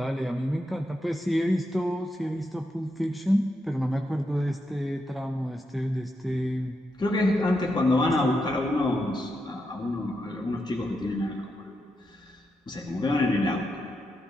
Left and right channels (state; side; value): normal; both; correlation 0.84